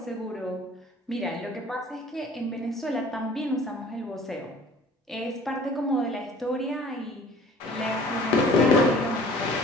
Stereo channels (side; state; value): both; normal; correlation 0.49